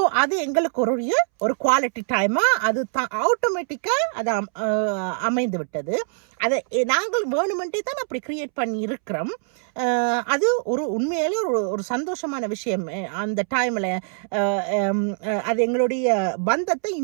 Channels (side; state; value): left; silent; 63 dB below the other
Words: அது எங்களுக்கு ஒரு குவாலிட்டி டைமா அது ஆட்டோமேட்டிக்கா அது அமைந்து விட்டது. அதை நாங்கள் வேணுமென்றே தான் அப்படி கிரியேட் பண்ணி இருக்கிறோம். அது உண்மையிலே ஒரு சந்தோஷமான விஷயம். அந்த டைம்ல அது எங்களுடைய பந்தத்தை